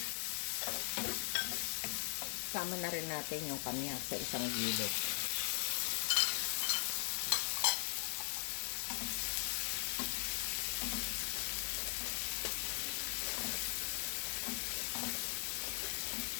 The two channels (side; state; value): right; silent; digital silence